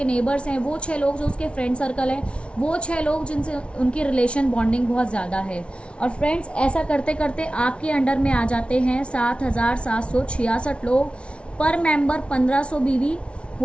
नेबर्स हैं, वो 6 लोग जो उसके फ्रेंड सर्कल है, वो 6 लोग जिनसे उनकी रिलेशन बॉन्डिंग बहुत ज़्यादा है। और फ्रेंड्स ऐसा करते करते आपके अंडर में आ जाते हैं 7,766 लोग। पर मेंबर 1,500 बीवी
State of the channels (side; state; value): right; late; 0.059 ms